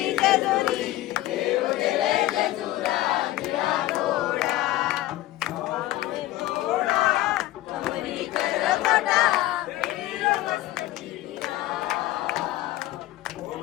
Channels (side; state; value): right; quieter; 15.8 dB